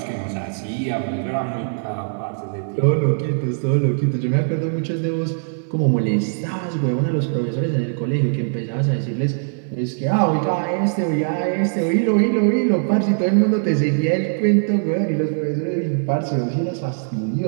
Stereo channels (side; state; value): left; silent; digital silence